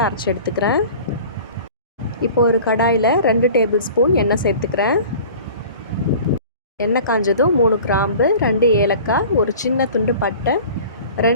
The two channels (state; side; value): inverted; both; correlation -0.42